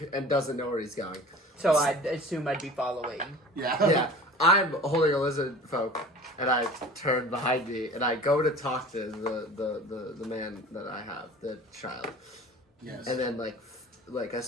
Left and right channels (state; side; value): normal; both; correlation 0.41